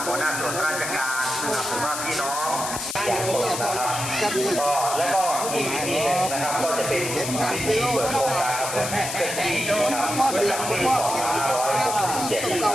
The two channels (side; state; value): left; noise; hiss, 5 dB below the sound